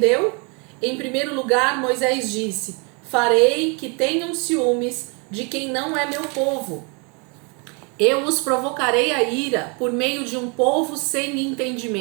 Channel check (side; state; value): left; quieter; 33.3 dB